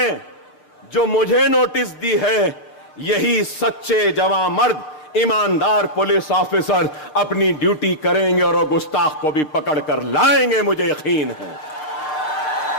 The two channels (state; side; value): late; right; 6.5 ms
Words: जो मुझे नोटिस दी है, यही सच्चे जवां मर्द ईमानदार पुलिस ऑफिसर अपनी ड्यूटी करेंगे और वो गुस्ताख को भी पकड़ कर लाएंगे, मुझे यकीन है।